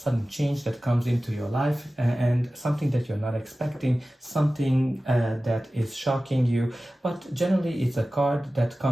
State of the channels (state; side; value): normal; both; correlation 0.96